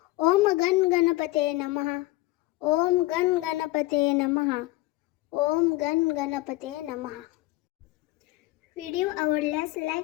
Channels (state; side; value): quieter; right; 19.0 dB